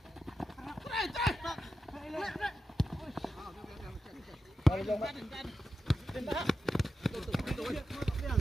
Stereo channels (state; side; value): normal; both; correlation 0.90